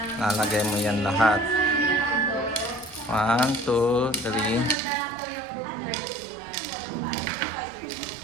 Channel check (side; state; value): left; drops out; at 4.8 s